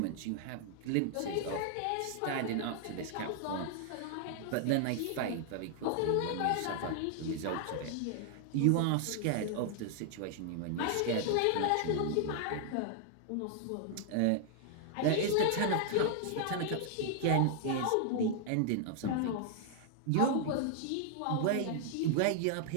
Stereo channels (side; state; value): both; different; correlation -0.01